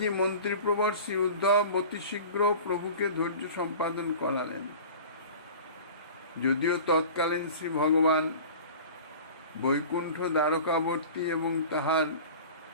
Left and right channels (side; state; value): both; inverted; correlation -0.39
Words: মন্ত্রীপ্রবর শ্রী উদ্ধব অতি শীঘ্র প্রভুকে ধৈর্য সম্পাদন করালেন। যদিও তৎকালীন শ্রী ভগবান বৈকুণ্ঠ দ্বারকাবর্তী এবং তাহার